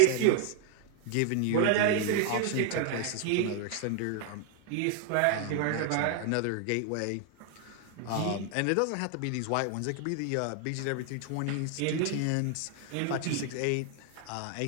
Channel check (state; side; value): different; both; correlation 0.00